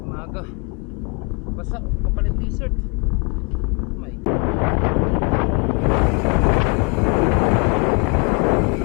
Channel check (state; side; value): quieter; right; 33.1 dB